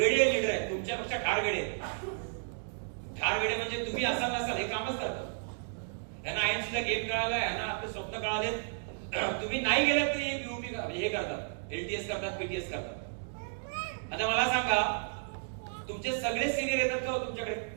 लीडर आहेत, तुमच्यापेक्षा ठार वेडे आहेत. ठार वेडे म्हणजे तुम्ही असाल नसाल हे कामच करतात. यांना आयएनसीचा गेम कळालाय, यांना आपले स्वप्न कळालेत. तुम्ही नाही गेलात तरी युपी हे करतात, एलटीएस करतात, पीटीएस करतात. आता मला सांगा, तुमचे सगळे सिनियर येतात का हो तुमच्याकडे?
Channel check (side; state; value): left; silent; digital silence